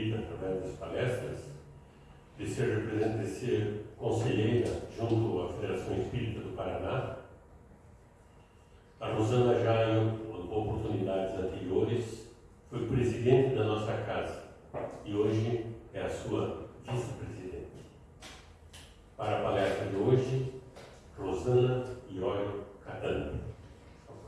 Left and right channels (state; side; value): identical; both; correlation 1.00